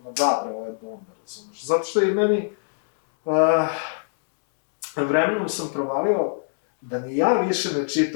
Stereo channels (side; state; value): right; silent; digital silence